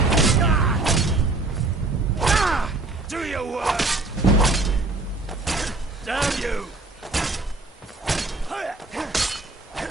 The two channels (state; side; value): quieter; left; 3.3 dB